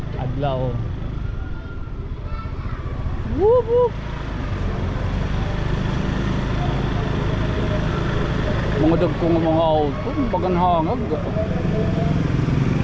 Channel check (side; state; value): both; identical; correlation 1.00